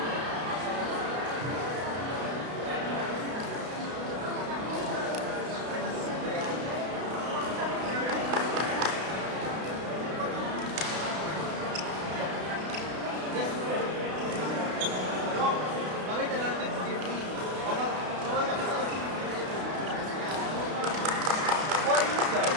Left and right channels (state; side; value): late; left; 32 ms